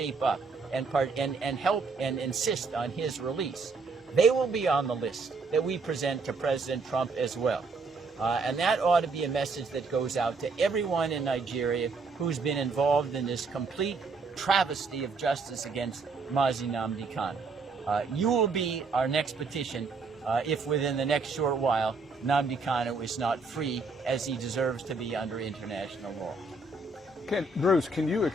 up and help and insist on his release, they will be on the list that we present to President Trump as well. And that ought to be a message that goes out to everyone in Nigeria who's been involved in this complete travesty of justice against Mazi Nnamdi Kanu. You will be our next petition if within the next short while Nnamdi Kanu is not free as he deserves to be under international law. Bruce, can you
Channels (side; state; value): left; quieter; 4.0 dB